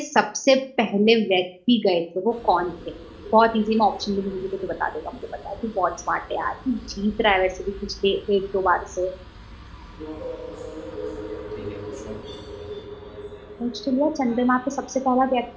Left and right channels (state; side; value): identical; both; correlation 1.00